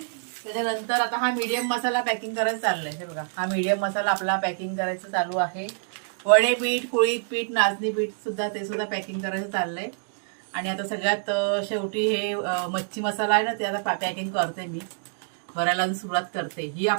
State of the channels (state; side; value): silent; left; digital silence